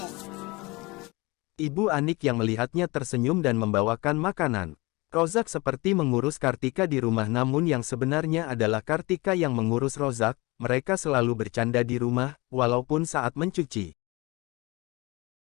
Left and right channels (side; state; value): right; quieter; 24.1 dB